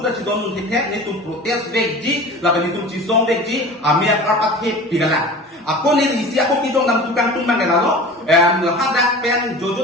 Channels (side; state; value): both; normal; correlation 0.38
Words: ci don ni ke ni tuhan protes veji la ni tuhan ci song veji amia karpat he pidala aku ni isi aku kidong nam tukang tumbang gelalo hadak pen